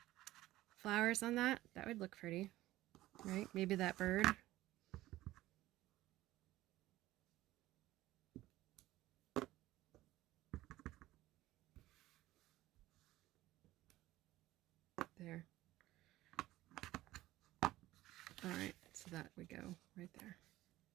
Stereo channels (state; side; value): quieter; left; 16.3 dB